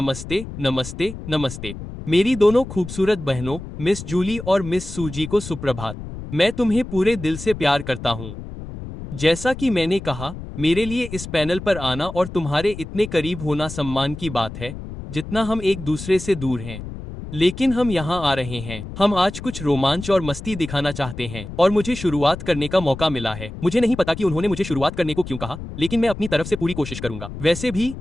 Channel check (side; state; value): left; noise; rumble, 10 dB below the sound